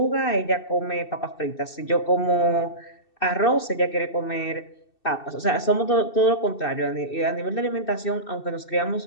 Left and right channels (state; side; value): late; right; 2.6 ms